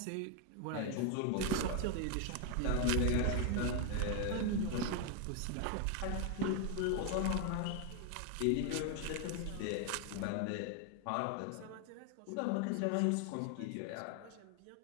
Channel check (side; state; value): both; different; correlation 0.01